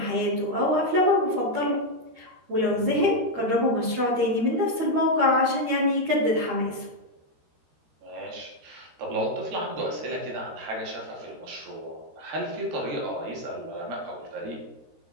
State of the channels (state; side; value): late; left; 13 ms